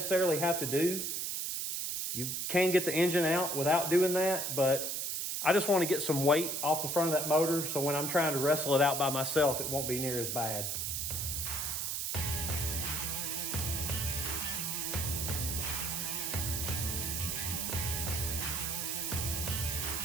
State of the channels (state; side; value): noise; right; hiss, 1 dB below the sound